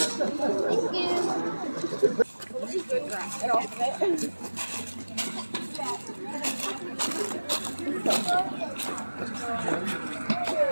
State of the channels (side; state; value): both; inverted; correlation -1.00